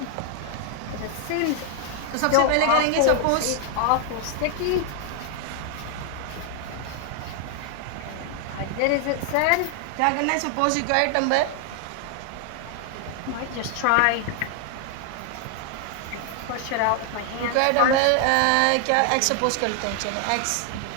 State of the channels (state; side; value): different; both; correlation 0.00